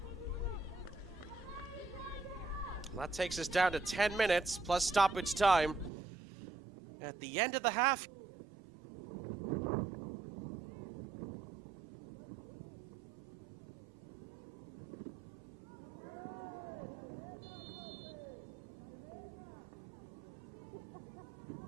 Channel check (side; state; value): left; drops out; at 5.9 s